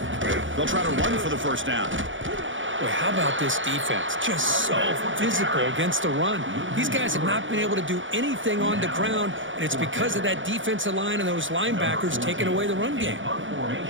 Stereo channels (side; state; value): left; late; 0.56 ms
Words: They'll try to run for the first down. Boy, how about this defense? Just so physical against the run. These guys have not been able to do anything on the ground, and it's because of that defensive line and those linebackers taking away the run game.